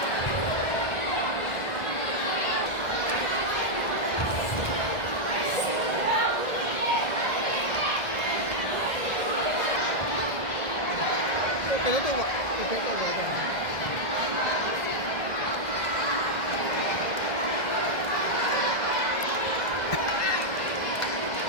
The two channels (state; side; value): late; right; 1.6 ms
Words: cái đó tôi gọi cái tôi gọi là